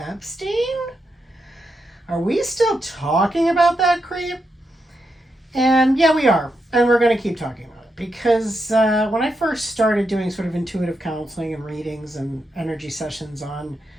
Are we still talking about that creep?" And yeah, we are. And we're going to keep talking about it. Because when I first started doing sort of intuitive counseling and readings and energy sessions on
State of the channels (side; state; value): both; normal; correlation 0.84